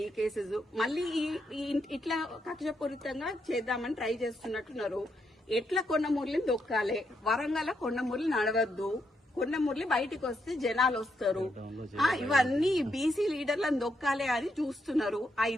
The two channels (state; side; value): normal; both; correlation 0.80